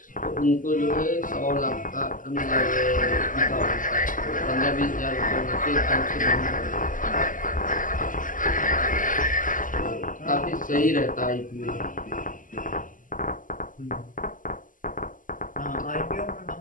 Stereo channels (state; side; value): late; right; 0.38 ms